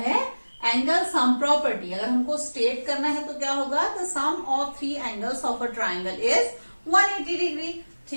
एंगल सम प्रॉपर्टी। अगर हमको स्टेट करना है तो क्या होगा, the sum of 3 angles of a triangle is 180 degree.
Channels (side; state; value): both; inverted; correlation -1.00